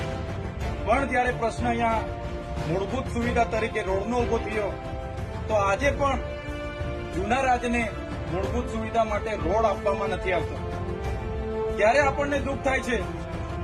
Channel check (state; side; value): identical; both; correlation 1.00